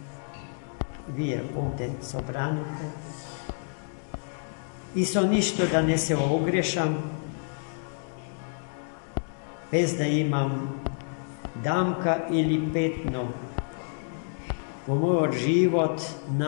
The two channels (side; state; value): right; silent; digital silence